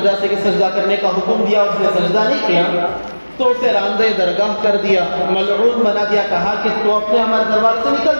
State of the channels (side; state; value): both; inverted; correlation -1.00